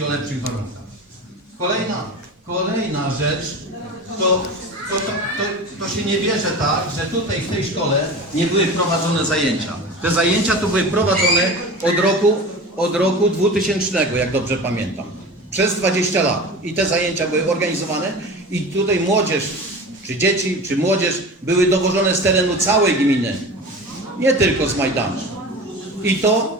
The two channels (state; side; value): normal; both; correlation 0.33